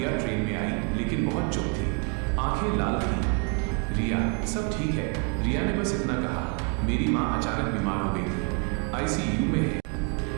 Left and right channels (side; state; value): left; quieter; 37.2 dB